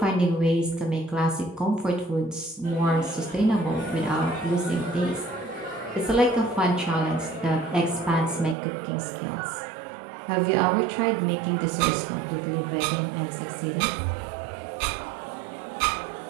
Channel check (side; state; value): left; drops out; at 8.6 s